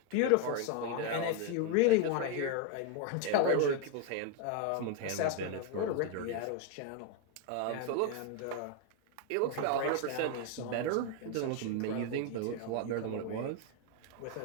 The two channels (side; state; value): both; different; correlation 0.01